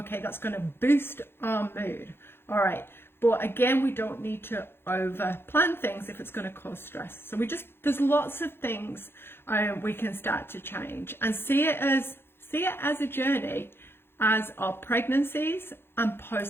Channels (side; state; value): right; late; 0.11 ms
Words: that's going to boost our mood. All right, but again, we don't need to over plan things if it's going to cause stress. So there's lots of things we can start to change, and see it as a journey, as our pregnancies and